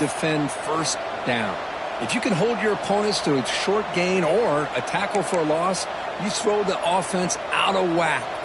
first down. If you can hold your opponents to a short gain or a tackle for a loss, you throw the offense out of whack,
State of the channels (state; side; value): identical; both; correlation 1.00